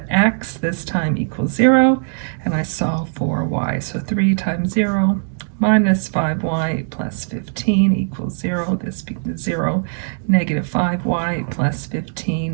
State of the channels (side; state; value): left; silent; digital silence